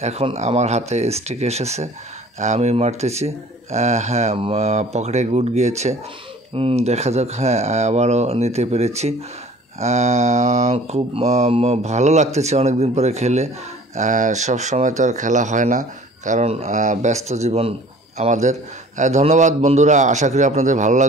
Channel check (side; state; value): both; normal; correlation 0.49